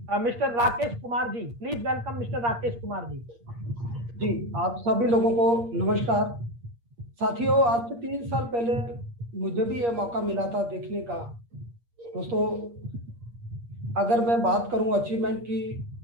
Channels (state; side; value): late; left; 8.5 ms